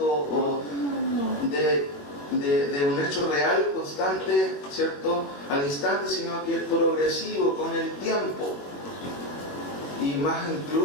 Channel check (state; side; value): late; right; 21 ms